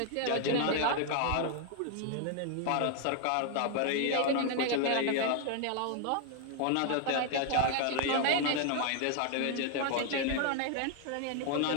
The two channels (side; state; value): both; different; correlation 0.00